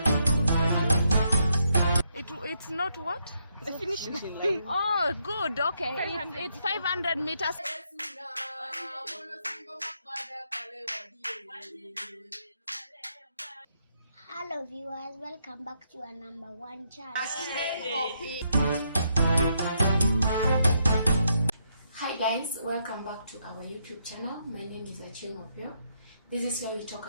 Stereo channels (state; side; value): inverted; both; correlation -0.77